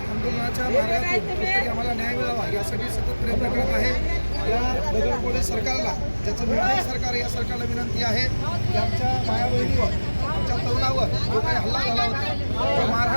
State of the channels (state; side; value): inverted; both; correlation -1.00